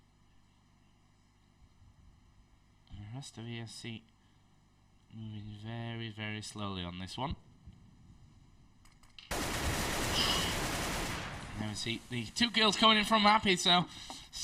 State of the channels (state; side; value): identical; both; correlation 1.00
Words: And the rest of ESC moving very, very slowly on this one. Now we see the 2 kills coming in from Happy, so